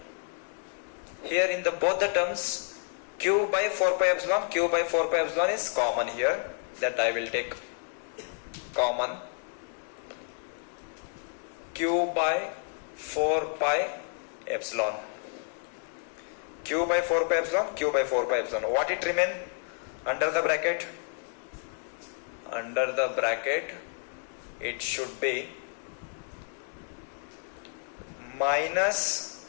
here in the both the terms Q by 4 pi epsilon is common here, that I will take common. Q by 4 pi epsilon, Q by 4 pi epsilon, what it remain under the bracket? Under the bracket it should be minus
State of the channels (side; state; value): right; silent; 58 dB below the other